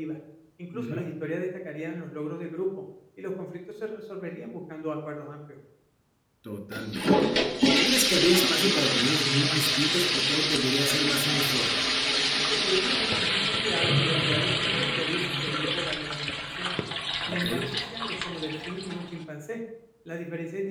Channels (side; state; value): both; identical; correlation 1.00